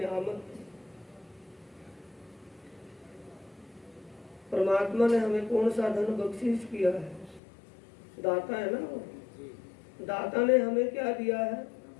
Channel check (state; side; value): drops out; right; at 7.4 s